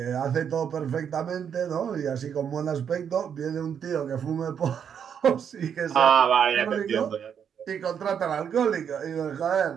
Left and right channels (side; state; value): left; quieter; 7.9 dB